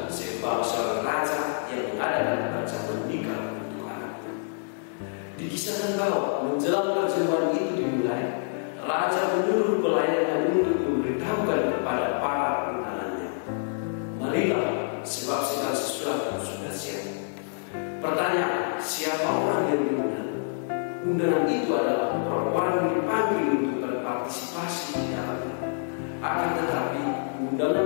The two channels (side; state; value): right; silent; digital silence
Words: sebab seorang raja yang mengadakan perjamuan nikah untuk anaknya. Dikisahkan bahwa menjelang perjamuan itu dimulai, raja menyuruh pelayannya untuk memberitahukan kepada para undangannya, marilah, sebab segala sesuatu sudah siap. Pertanyaan, siapa orang yang diundang? Undangan itu adalah orang-orang yang dipanggil untuk berpartisipasi di dalamnya. Akan tetapi, undangan